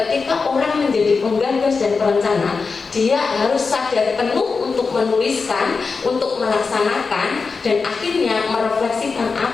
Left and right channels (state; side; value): quieter; right; 4.7 dB